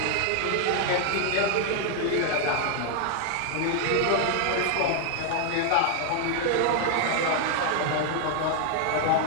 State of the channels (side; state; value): both; different; correlation 0.00